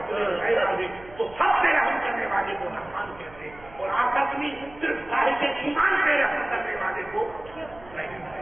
غیر آگے تو سب سے رحم کرنے والے کو رحمان کہتے ہیں اور آخرت میں صرف صاحب ایمان پہ رحم کرنے والے کو رحیم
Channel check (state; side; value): noise; right; hum, 21 dB below the sound